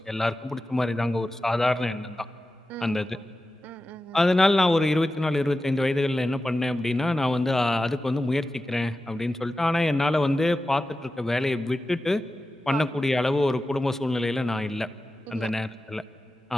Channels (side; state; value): both; normal; correlation 0.93